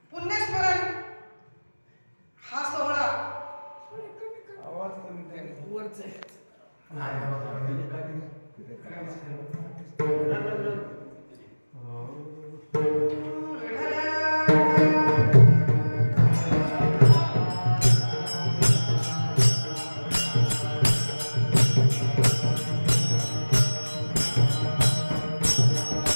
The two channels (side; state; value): both; inverted; correlation -1.00